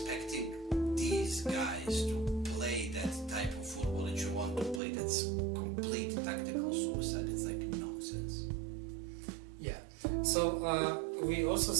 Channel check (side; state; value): left; drops out; at 4.8 s